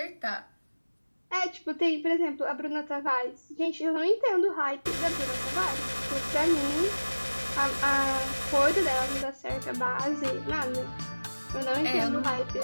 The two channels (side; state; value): both; inverted; correlation -1.00